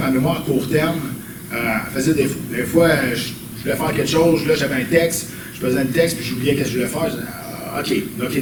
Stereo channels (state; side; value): identical; both; correlation 1.00